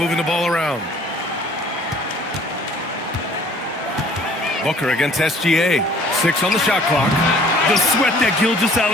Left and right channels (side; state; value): both; normal; correlation 0.54